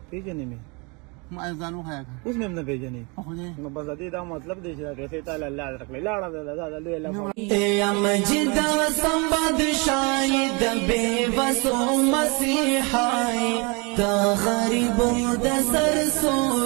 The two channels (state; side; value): quieter; left; 30.1 dB